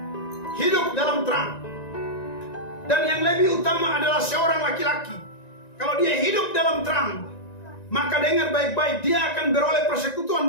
hidup dalam terang. Dan yang lebih utama adalah seorang laki-laki, kalau dia hidup dalam terang, maka dengar baik-baik, dia akan beroleh persekutuan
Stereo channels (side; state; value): right; late; 1.9 ms